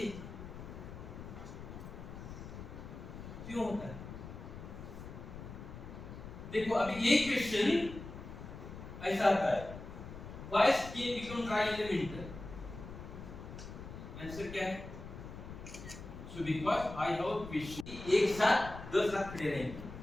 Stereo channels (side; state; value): left; noise; rumble, 11 dB below the sound